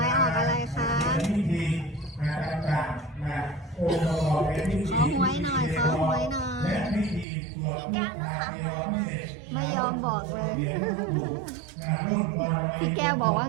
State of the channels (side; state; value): left; drops out; at 7.2 s